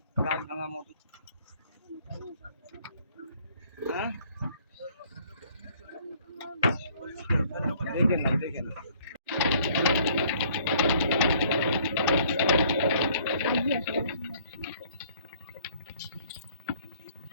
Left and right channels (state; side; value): inverted; both; correlation -0.59